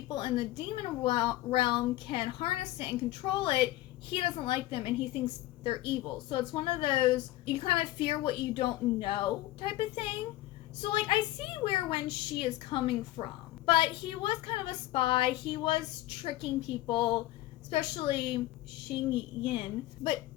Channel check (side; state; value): right; quieter; 16.3 dB